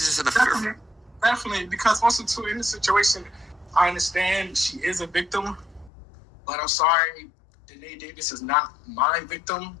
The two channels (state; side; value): drops out; right; at 5.9 s